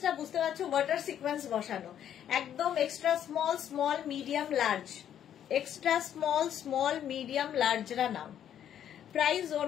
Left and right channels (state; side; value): quieter; right; 10.0 dB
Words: বুঝতে পারছো, ওয়াটার সিকোয়েন্স বসানো, একদম extra small, small, medium, large, extra small, small, medium, লার্জরা নাও। Price